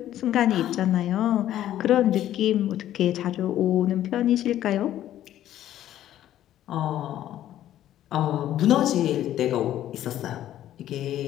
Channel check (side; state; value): right; quieter; 12.3 dB